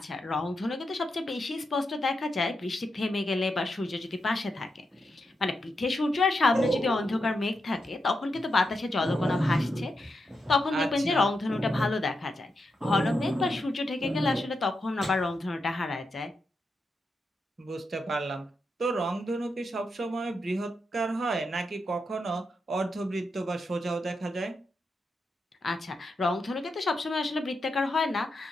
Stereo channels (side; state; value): both; normal; correlation 0.86